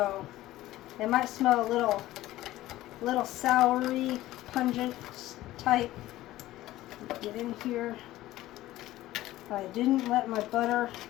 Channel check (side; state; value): right; quieter; 15.7 dB